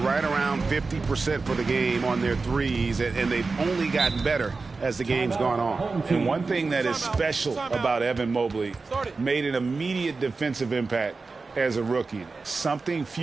around 50% for the game on their threes. And they've only gotten better as the game's gone on. And one thing that is special about Evan Mobley, made an immediate defensive impact as a rookie. Something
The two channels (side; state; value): left; quieter; 4.1 dB